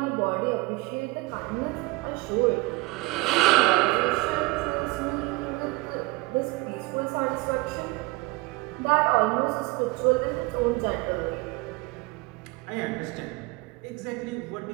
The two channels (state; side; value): quieter; left; 23.0 dB